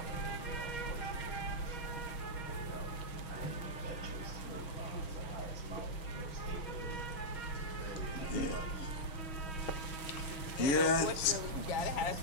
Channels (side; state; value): right; late; 6.3 ms